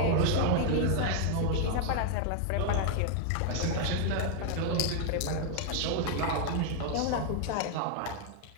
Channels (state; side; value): different; both; correlation 0.00